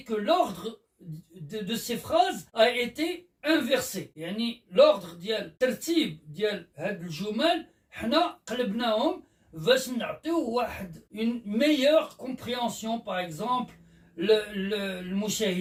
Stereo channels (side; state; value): both; identical; correlation 1.00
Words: que l'ordre de ces phrases a été inversé. L'ordre ديال الترتيب ديال هاد الجمل حنا قلبناهم باش نعطيو واحد une meilleure compréhension, par exemple